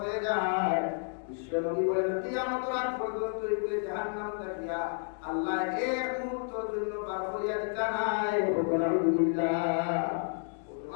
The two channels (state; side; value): silent; right; 55 dB below the other